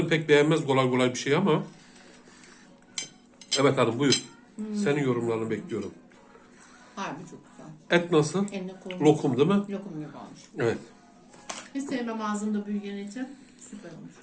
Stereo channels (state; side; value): identical; both; correlation 1.00